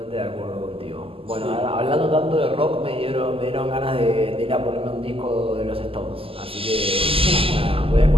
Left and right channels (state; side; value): late; left; 0.27 ms